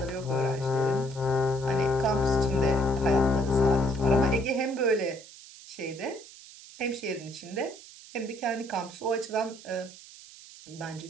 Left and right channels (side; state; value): right; noise; hiss, 18 dB below the sound